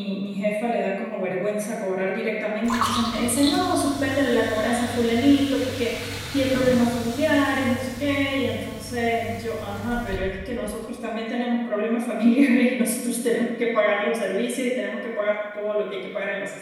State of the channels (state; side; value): identical; both; correlation 1.00